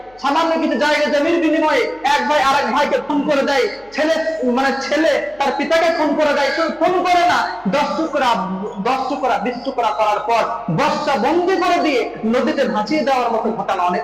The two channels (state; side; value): noise; left; hum, 30 dB below the sound